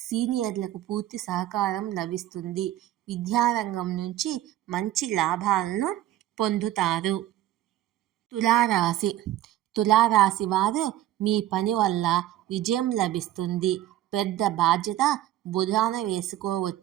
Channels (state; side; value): quieter; left; 13.7 dB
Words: సీనియర్లకు పూర్తి సహకారం లభిస్తుంది. విద్యారంగం నుంచి మంచి లాభాలను పొందుతారు. తులారాశి. తులారాశి వారు మీ పని వల్ల విజయం లభిస్తుంది. పెద్ద బాధ్యత భుజాన